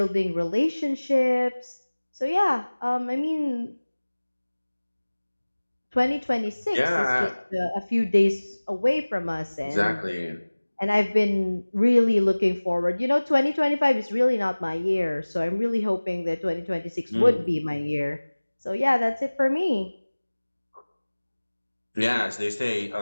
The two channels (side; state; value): both; inverted; correlation -1.00